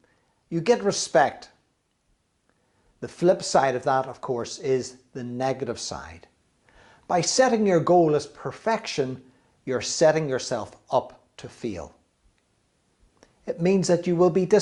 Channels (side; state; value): both; identical; correlation 1.00